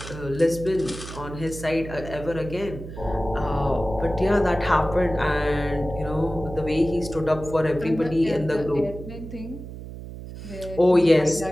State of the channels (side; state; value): right; noise; hum, 12 dB below the sound